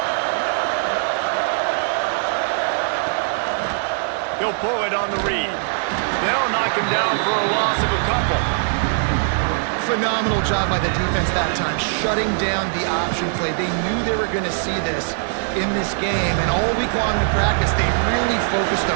He'll pull it on the read. They'll knock him down for a loss of a couple. Phenomenal job by the defense that time, shutting down the option play. They knew they were going to see this in this game, and all week long in practice, they really focused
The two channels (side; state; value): left; silent; digital silence